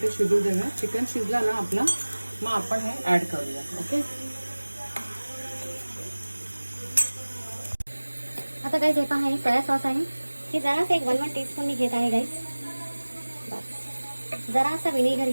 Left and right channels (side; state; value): both; inverted; correlation -1.00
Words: शिजू देऊया. चिकन शिजला ना आपला, मग आपण हे ॲड करूया. ओके, आता गाईस हे पहा, हे सोया सॉस आहे. हे जरासं एक 1 टीस्पून मी घेत आहे गाईस. बस, जरासा विनेगर